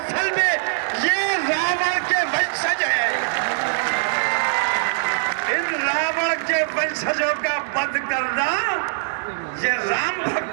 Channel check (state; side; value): silent; left; 64 dB below the other